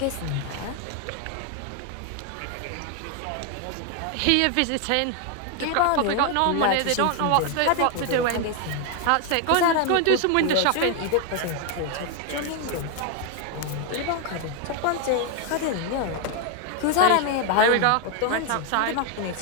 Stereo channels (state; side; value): different; both; correlation 0.01